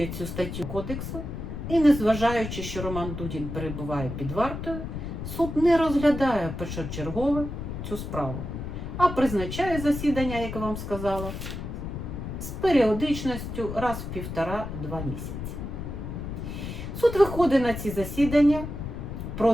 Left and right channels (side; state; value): left; noise; rumble, 6 dB below the sound